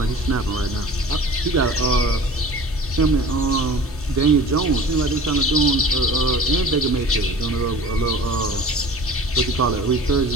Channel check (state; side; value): normal; both; correlation 0.42